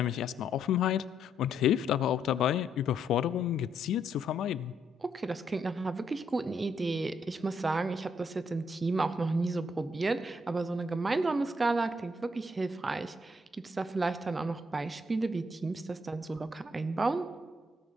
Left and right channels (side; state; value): both; normal; correlation 0.74